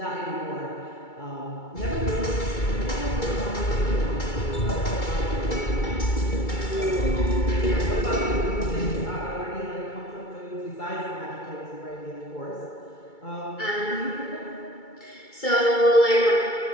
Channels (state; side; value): late; right; 2.3 ms